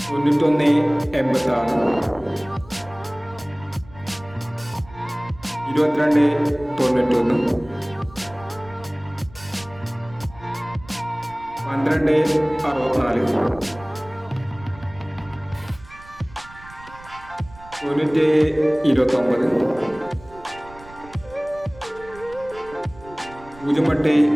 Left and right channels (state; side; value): noise; right; rumble, 20 dB below the sound